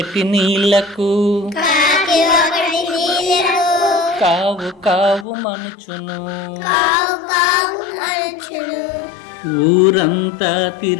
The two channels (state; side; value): drops out; right; at 5.2 s